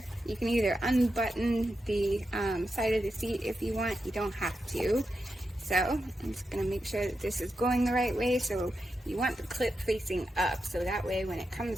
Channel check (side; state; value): both; normal; correlation 0.87